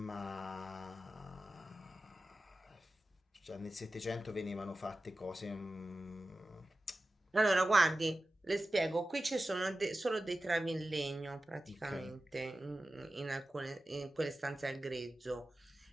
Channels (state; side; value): normal; both; correlation 0.94